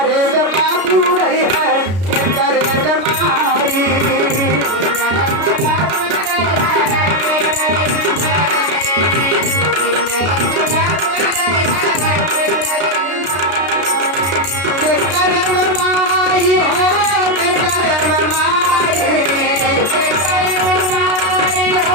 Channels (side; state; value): left; late; 33 ms